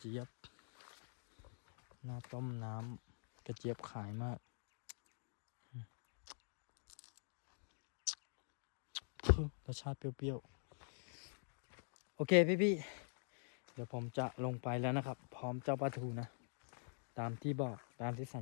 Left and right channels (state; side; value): silent; right; digital silence